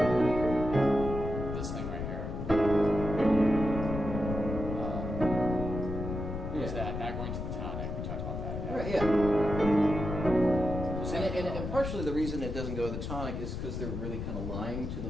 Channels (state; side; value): noise; left; rumble, 5 dB below the sound